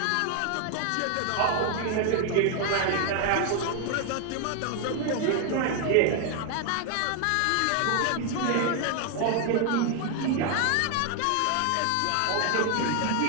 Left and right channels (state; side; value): different; both; correlation 0.00